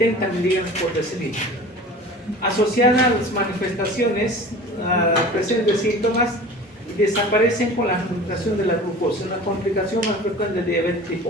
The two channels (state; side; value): normal; both; correlation 0.40